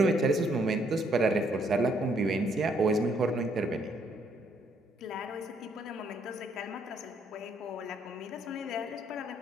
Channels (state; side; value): normal; both; correlation 0.69